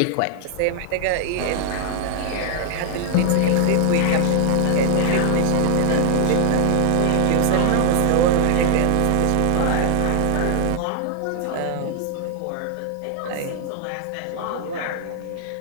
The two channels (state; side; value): different; both; correlation 0.00